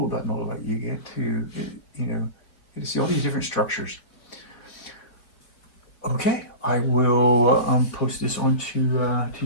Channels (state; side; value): late; right; 4.7 ms